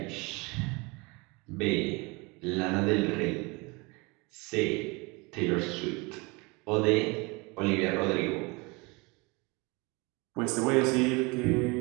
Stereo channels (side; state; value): left; quieter; 27.0 dB